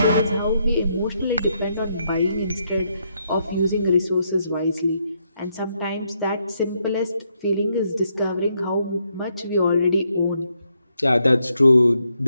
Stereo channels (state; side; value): inverted; both; correlation -0.77